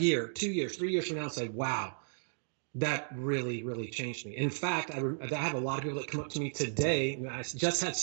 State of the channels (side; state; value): left; silent; digital silence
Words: 2 years, 3 years from now and say, wow, that really, really changed me. In fact, I have a lot of people that come up to me today. I just had